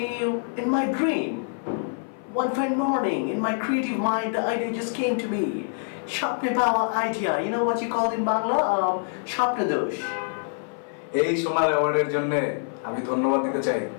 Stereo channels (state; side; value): silent; right; 57 dB below the other